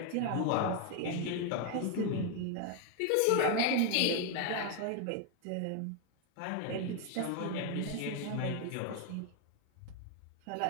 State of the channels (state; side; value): different; both; correlation 0.01